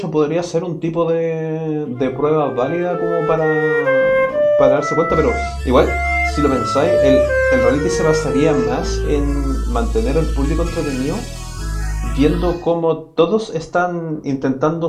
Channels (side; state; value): both; identical; correlation 1.00